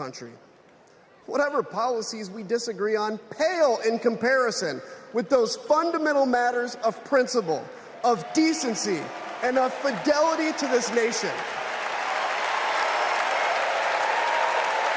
Whatever policies we disagree on pale in comparison with those fundamental matters of principle, of decency, and of fidelity to this nation.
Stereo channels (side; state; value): both; identical; correlation 1.00